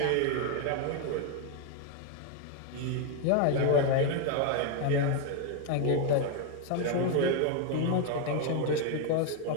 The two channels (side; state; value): both; different; correlation 0.01